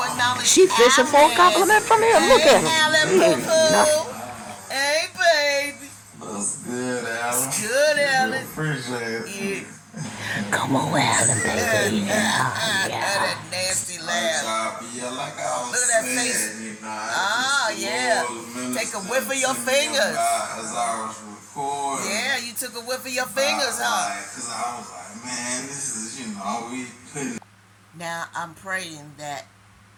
acknowledge. She fishing for a compliment from him. Look at him. Alan, boo-boo. Hey, baby. That's good, Alan. Good, Alan. Appreciate it. Yeah. Come on, Alan, baby. Yeah. That nasty laugh. Yeah, like I was Look at that saying, face. you know, Yeah. Take a whiff of your fingers. As I was recording. Yeah, you took a whiff of your fingers, huh? Because I was like, man, this is, we couldn't. Now, I'm praying that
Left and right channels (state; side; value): identical; both; correlation 1.00